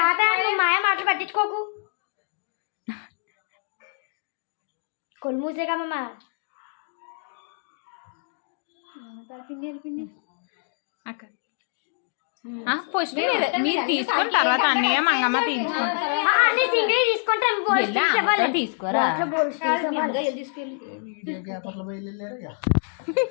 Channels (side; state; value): right; silent; 61 dB below the other